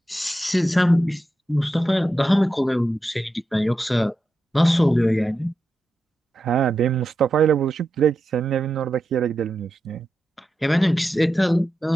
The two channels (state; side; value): normal; both; correlation 0.89